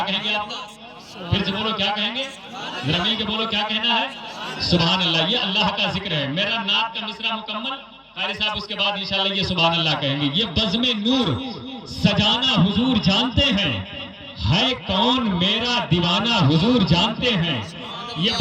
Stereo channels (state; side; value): identical; both; correlation 1.00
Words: کہیں گے آپ؟ پھر سے بولو، کیا کہیں گے؟ ذرا مل کے بولو، کیا کہنا ہے؟ سبحان اللہ۔ یہ اللہ کا ذکر ہے۔ میرا نعت کا مصرع مکمل، قاری صاحب اس کے بعد انشاءاللہ یہ سبحان اللہ کہیں گے۔ یہ بزم نور سجانا حضور جانتے ہیں، ہے کون میرا دیوانہ حضور جانتے ہیں۔ یہ